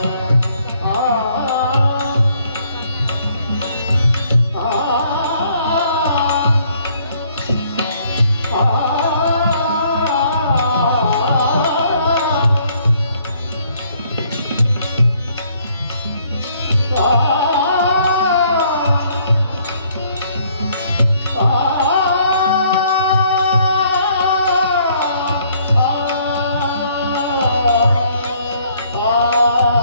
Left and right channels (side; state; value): both; inverted; correlation -0.65